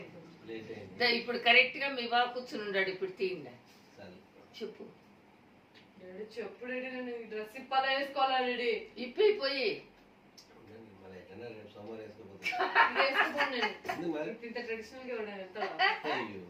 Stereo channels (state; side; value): identical; both; correlation 1.00